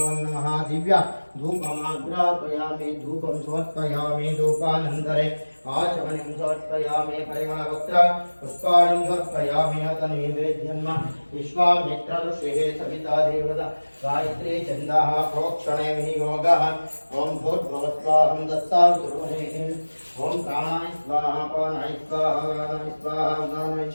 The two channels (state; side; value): inverted; both; correlation -1.00